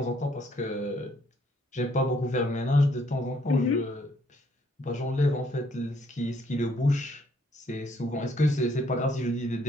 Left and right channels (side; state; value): both; normal; correlation 0.67